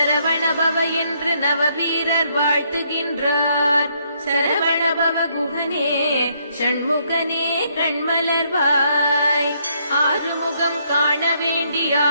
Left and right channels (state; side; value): inverted; both; correlation -0.71